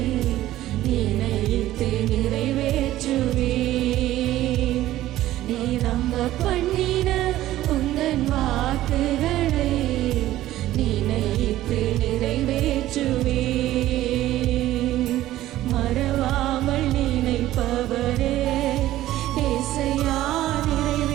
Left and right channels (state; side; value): quieter; left; 14.6 dB